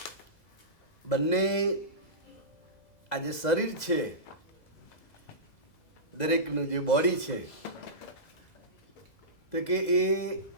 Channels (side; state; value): right; late; 2.0 ms